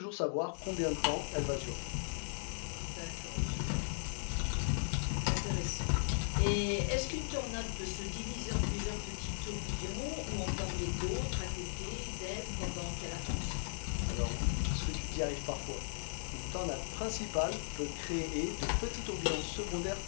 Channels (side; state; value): right; silent; digital silence